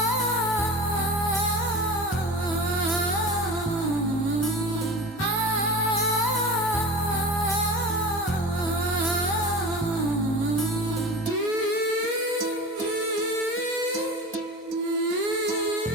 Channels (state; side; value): normal; both; correlation 0.33